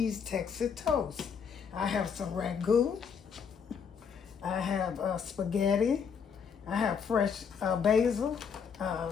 Texas toast. I have some ragu. I have spaghetti. I have fresh basil,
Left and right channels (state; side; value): quieter; right; 6.7 dB